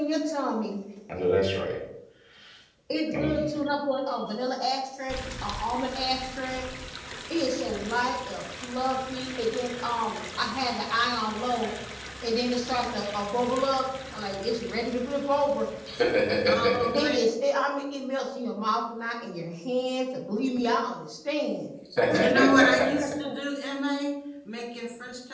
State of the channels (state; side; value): identical; both; correlation 1.00